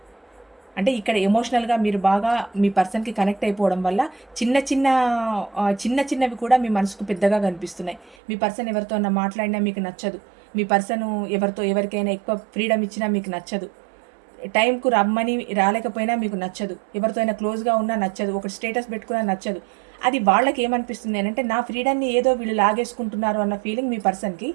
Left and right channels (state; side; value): drops out; left; at 8.2 s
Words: అంటే ఇక్కడ ఎమోషనల్గా మీరు బాగా మీ పర్సన్కి కనెక్ట్ అయిపోవడం వల్ల చిన్నవి కూడా మీ మనసుకు పెద్దగా కనిపిస్తున్నాయి. మీ పర్సన్ ఎవరితో మాట్లాడినా మీకు నచ్చదు, మీ పర్సన్ ఎవరికైనా ఎక్కువ ఫ్రీడమ్ ఇచ్చినా మీకు నచ్చదు, టైంకు రమ్మని రాలేకపోయినా మీకు నచ్చదు, ఎవరితో అయినా క్లోజ్గా ఉన్నా నచ్చదు, ఒక స్టేటస్ పెట్టుకున్నా నచ్చదు. అది వాళ్ళకి ఏమనిపిస్తుంది అని అంటే నా ఫ్రీడమ్ని ఏదో వీళ్ళు లాగేసుకుంటున్నారు అన్న ఫీలింగ్ మీ పర్సన్కి.